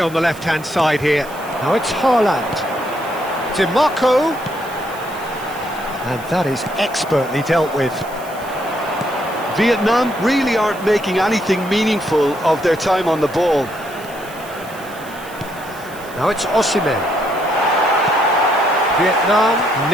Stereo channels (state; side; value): noise; right; hiss, 19 dB below the sound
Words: the left-hand side here. Now it's Haaland. Dimarco. And that is expertly dealt with. Vietnam really aren't making anything meaningful of their time on the ball. Now it's Osimhen. Vietnam